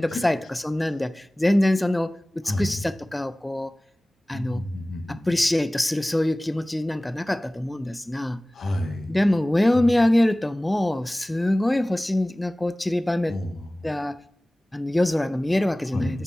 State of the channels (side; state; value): both; normal; correlation 0.98